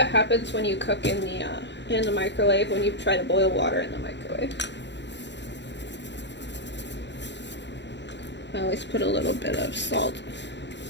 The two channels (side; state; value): right; late; 0.52 ms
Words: happens when you cook in the microwave, when you try to boil water in the microwave. I always put a little bit of salt